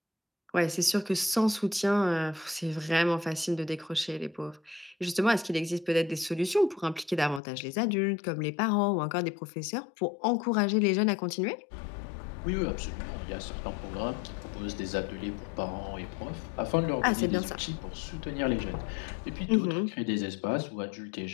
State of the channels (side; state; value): right; drops out; at 7.4 s